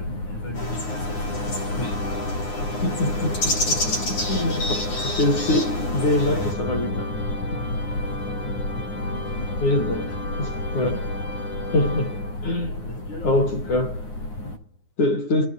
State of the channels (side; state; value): right; late; 9.6 ms